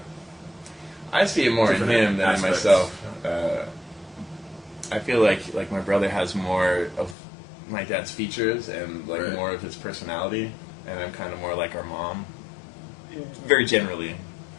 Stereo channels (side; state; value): right; drops out; at 7.2 s